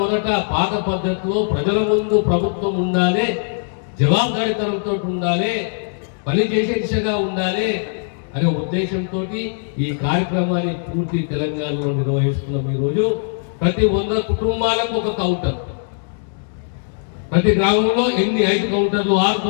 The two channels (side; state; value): right; silent; digital silence